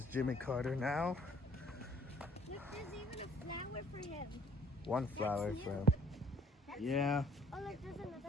Jimmy Carter now. Look, there's even a flower for him. One flower for him. Yeah. Oh, look, there's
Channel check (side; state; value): both; normal; correlation 0.58